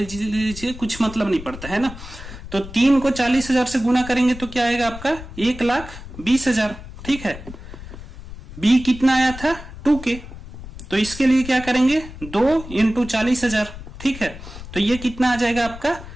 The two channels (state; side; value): noise; left; rumble, 13 dB below the sound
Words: कुछ मतलब नहीं पड़ता है ना। तो 3 को 40,000 से गुना करेंगे तो क्या आएगा आपका 1,20,000, ठीक है। b कितना आया था 2k, तो इसके लिए क्या करेंगे 2 इंटू 40,000, ठीक है। तो ये कितना आ जाएगा आपका